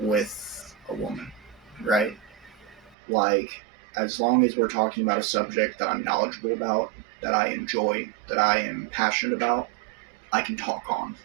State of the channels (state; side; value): drops out; left; at 3.0 s